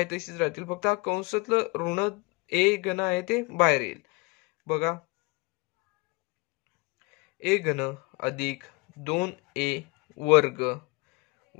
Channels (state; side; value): quieter; right; 26.7 dB